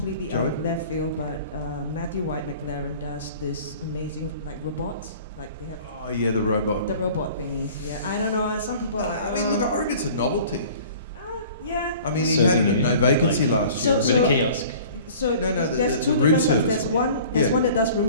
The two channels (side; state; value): both; inverted; correlation -0.46